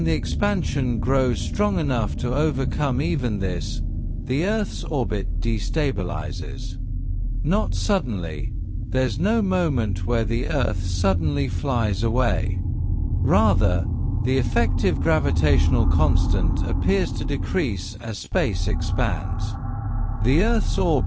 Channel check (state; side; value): identical; both; correlation 1.00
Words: the expansion grows strong enough to overcome even this, the Earth's orbit destabilizes. Not suddenly. There's no moment where the Earth suddenly flies away. Rather, the effective gravitational constant appears to decrease as space expands. The Earth's